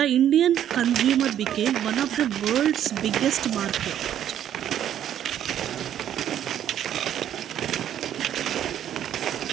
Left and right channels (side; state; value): left; quieter; 10.5 dB